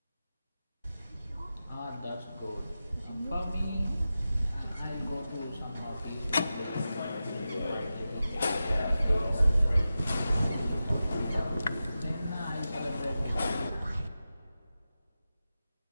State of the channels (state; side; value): inverted; both; correlation -0.93